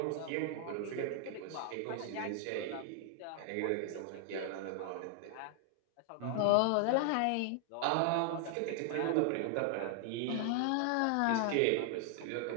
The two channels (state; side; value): different; both; correlation 0.00